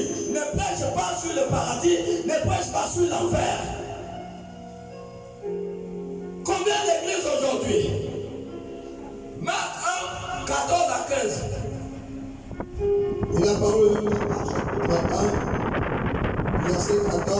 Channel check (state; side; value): identical; both; correlation 1.00